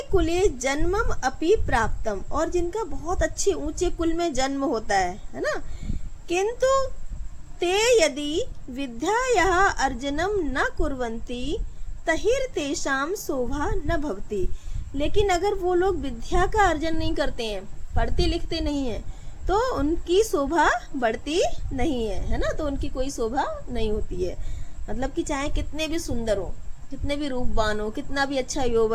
कुले जन्मम अपि प्राप्तम, और जिनका बहुत अच्छे ऊंचे कुल में जन्म होता है ना। किंतु ते यदि विद्यायाः अर्जनम न कुर्वन्ति तहिर तेषाम शोभा न भवति, लेकिन अगर वो लोग विद्या का अर्जन नहीं करते हैं, पढ़ते लिखते नहीं हैं, तो उनकी शोभा बढ़ती नहीं है ना, तो उनकी कोई शोभा नहीं होती है। मतलब कि चाहे कितने भी सुंदर हो, कितने भी रूपवान हो, कितना भी अच्छा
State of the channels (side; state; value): both; identical; correlation 1.00